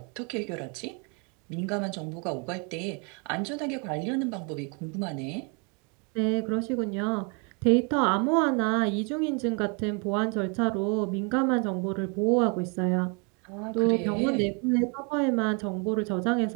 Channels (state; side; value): quieter; left; 34.5 dB